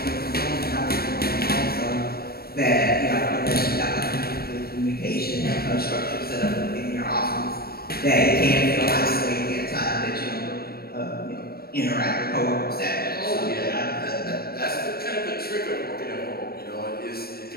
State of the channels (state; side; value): late; right; 0.44 ms